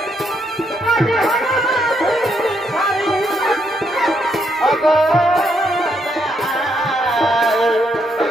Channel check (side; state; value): both; normal; correlation 0.76